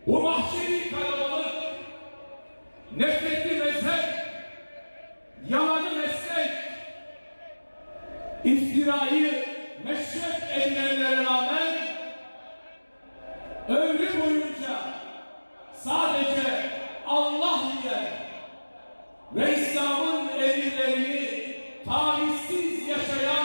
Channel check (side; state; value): both; inverted; correlation -1.00